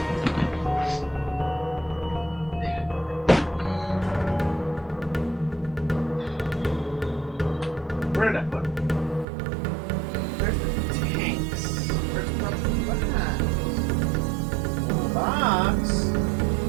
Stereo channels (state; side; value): drops out; left; at 9.2 s